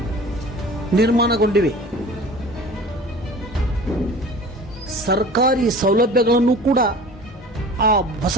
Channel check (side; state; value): both; normal; correlation 0.41